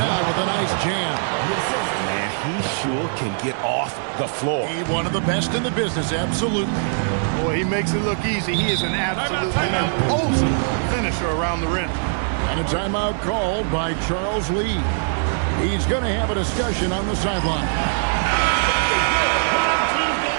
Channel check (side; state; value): left; silent; 64 dB below the other